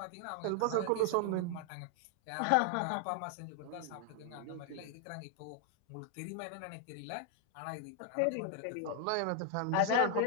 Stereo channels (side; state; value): both; different; correlation 0.00